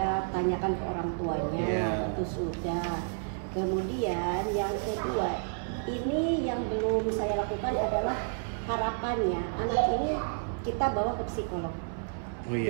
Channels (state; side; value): silent; left; 57 dB below the other